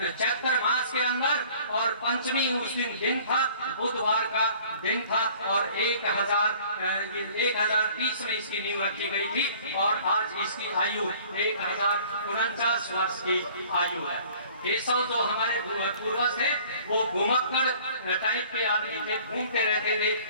चैत्र मास के अंदर और पंचमी उस दिन था, बुधवार का दिन था और 1030 में इसकी नींव रखी गई थी और आज इसकी आयु 1049 वर्ष की आयु है। केशव जो हमारे पूर्वज थे वो घुमक्कड़ टाइप के आदमी थे, घूमते रहते थे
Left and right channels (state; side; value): inverted; both; correlation -0.52